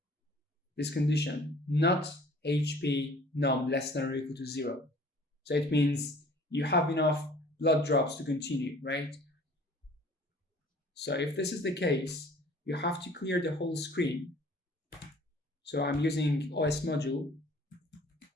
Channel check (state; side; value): normal; both; correlation 0.51